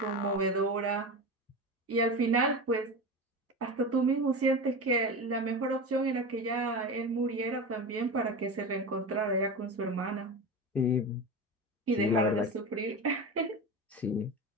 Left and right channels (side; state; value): both; normal; correlation 0.26